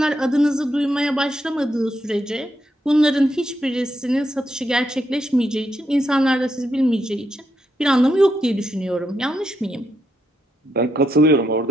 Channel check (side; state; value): both; normal; correlation 0.81